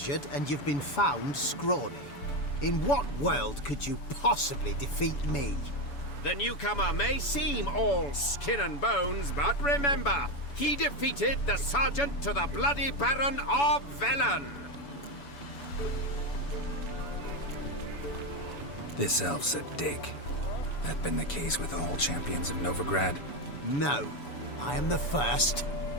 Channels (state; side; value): late; right; 7.0 ms